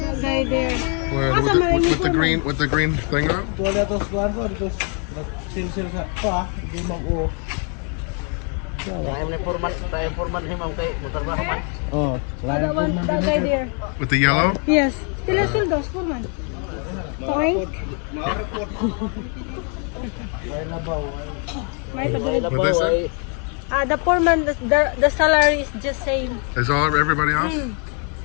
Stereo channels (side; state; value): right; quieter; 39.2 dB